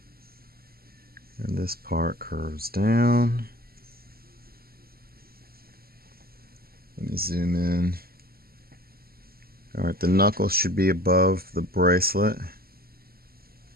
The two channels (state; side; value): late; left; 0.44 ms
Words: And this part curves down. Let me zoom in. Alright, the knuckle should be above the bracelet.